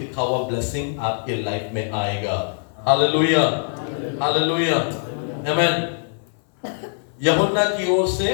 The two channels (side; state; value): right; silent; 59 dB below the other